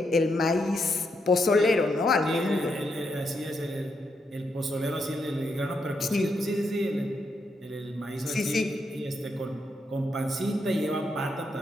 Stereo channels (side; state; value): both; normal; correlation 0.80